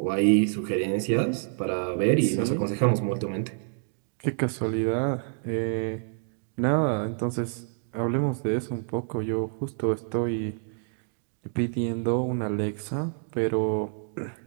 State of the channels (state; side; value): silent; left; digital silence